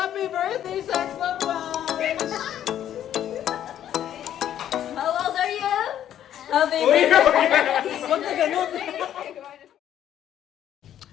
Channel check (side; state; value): right; quieter; 10.9 dB